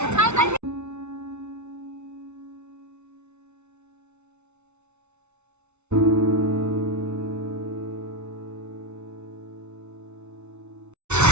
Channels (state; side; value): late; left; 0.82 ms